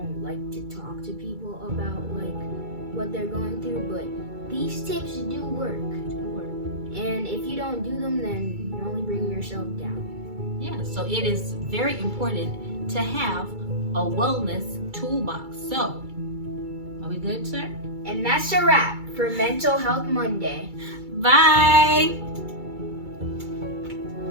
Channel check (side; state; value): left; late; 2.3 ms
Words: like to talk to people about what they're going through, but these tips do work. And if you don't do them, then you're only bringing yourself down. Yeah, so it is very important to have a wellness toolbox. So, are we good, sir? And that's a wrap for Mental Health Monday. Bye!